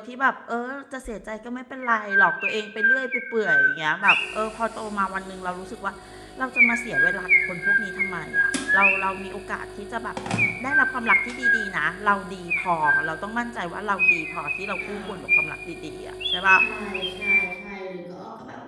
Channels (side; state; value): both; identical; correlation 1.00